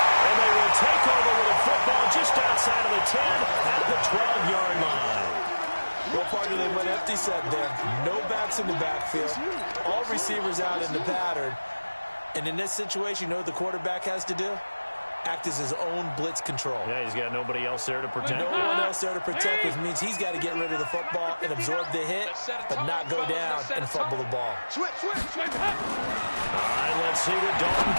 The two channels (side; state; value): both; inverted; correlation -1.00